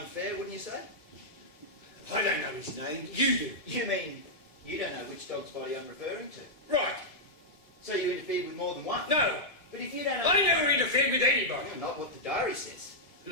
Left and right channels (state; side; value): late; right; 1.7 ms